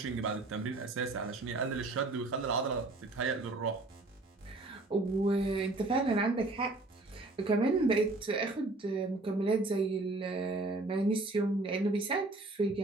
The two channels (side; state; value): left; quieter; 3.1 dB